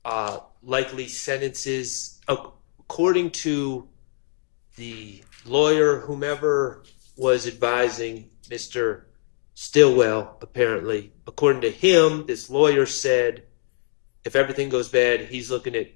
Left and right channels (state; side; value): silent; right; digital silence